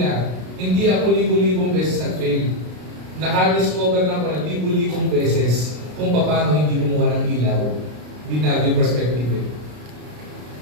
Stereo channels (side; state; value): left; late; 33 ms